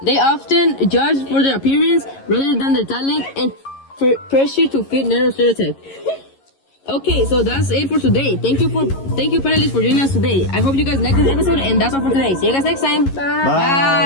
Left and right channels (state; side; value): late; right; 11 ms